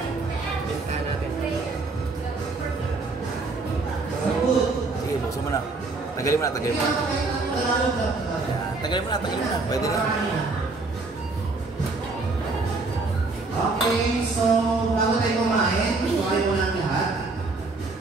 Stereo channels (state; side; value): quieter; left; 3.6 dB